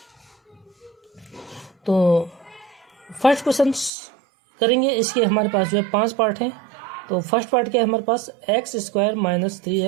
तो फर्स्ट क्वेश्चन करेंगे। इसके हमारे पास जो है 5 पार्ट हैं। तो फर्स्ट पार्ट क्या है हमारे पास, x square minus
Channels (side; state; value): left; drops out; at 3.9 s